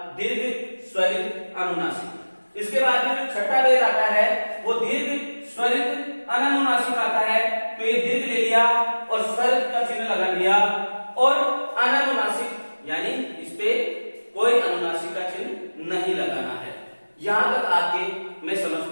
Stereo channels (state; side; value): inverted; both; correlation -1.00